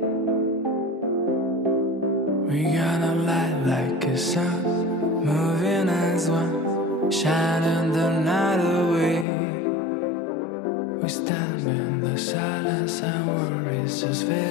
We're gonna light like a sun, moving as one, shining the night away. We stand in the silence and worries just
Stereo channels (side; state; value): right; drops out; at 9.2 s